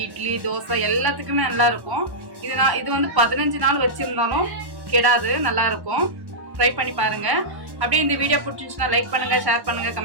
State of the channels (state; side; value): late; left; 1.1 ms